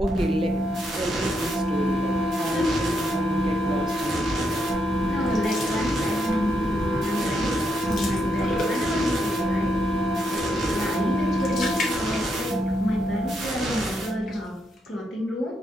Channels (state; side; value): normal; both; correlation 0.79